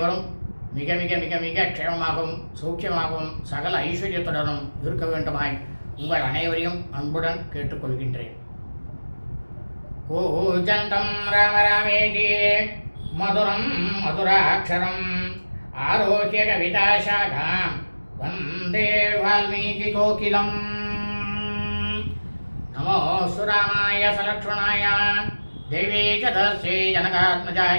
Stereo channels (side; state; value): both; inverted; correlation -1.00